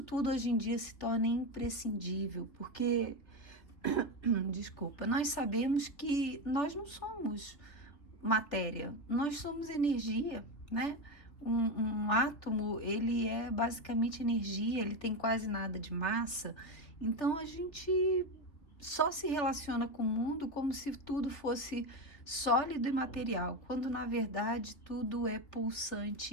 tudo hoje em dia se torna imprescindível, porque desculpa, nós sabemos que nós não somos matéria, nós somos energia, né? Um átomo, ele é basicamente energia, ele tem quase nada de massa, então a gente só se relaciona com o mundo como se tudo fosse sólido e material, quando na verdade tudo é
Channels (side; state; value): right; late; 3.0 ms